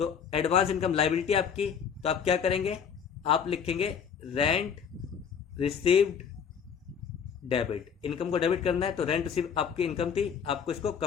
एडवांस इनकम लायबिलिटी आपकी, तो आप क्या करेंगे, आप लिखेंगे रेंट रिसीव्ड डेबिट। इनकम को डेबिट करना है, तो रेंट रिसीव आपकी इनकम थी, आपको इसको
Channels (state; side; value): quieter; right; 7.2 dB